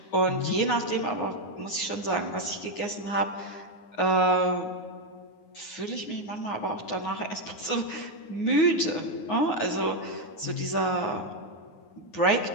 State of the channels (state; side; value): late; right; 9.6 ms